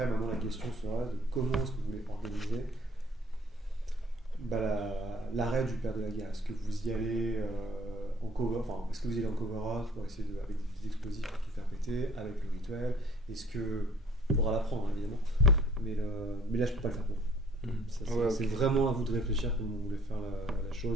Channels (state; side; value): normal; both; correlation 0.55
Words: maintenant, la question sera de comment est-ce que vous voulez organiser l'arrêt du père de la guerre. Est-ce que vous y allez en cover, est-ce que vous y allez en cover-up pour essayer avec des petits explosifs pour tout faire péter, avec le rituel? Est-ce que il faudra l'apprendre, évidemment, mais là, je peux pas le faire pour vous. C'est vraiment à vous de réfléchir comment vous voulez faire la